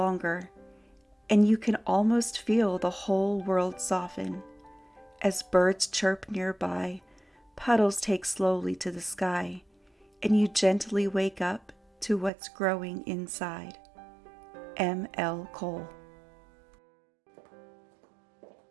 and you can almost feel the whole world soften. As birds chirp nearby, puddles take slowly to the sky, and you gently wake up to what's growing inside. M. L. Cole.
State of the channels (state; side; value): drops out; left; at 12.3 s